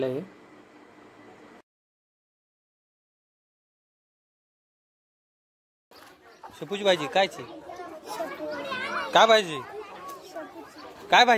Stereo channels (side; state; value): both; identical; correlation 1.00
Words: आहे। शेपूची भाजी कायची? काय भाजी? काय